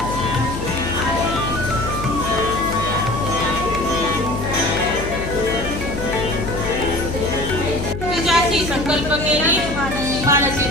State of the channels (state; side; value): noise; left; hum, 6 dB below the sound